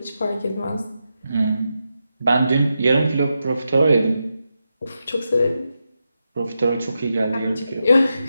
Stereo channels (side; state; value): both; inverted; correlation -0.87